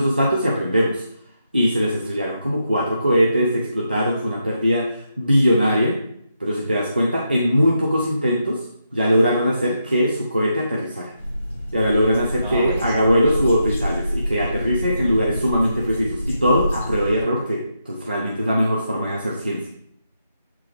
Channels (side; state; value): both; inverted; correlation -0.82